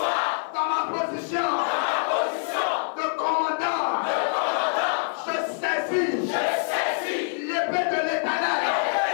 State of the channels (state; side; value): silent; right; digital silence